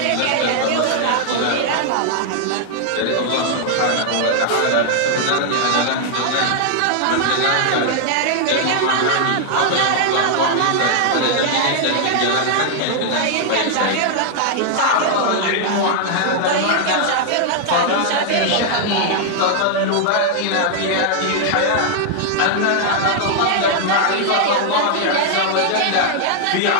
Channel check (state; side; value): different; both; correlation 0.00